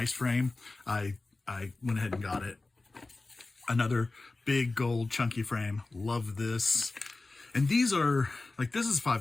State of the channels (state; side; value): quieter; right; 3.3 dB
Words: frame, I went ahead and got it. Another big gold chunky frame. Love this. And these are, like, this is